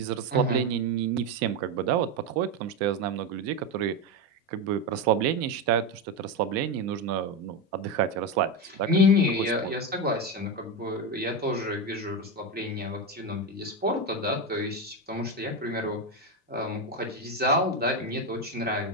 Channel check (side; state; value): both; normal; correlation 0.13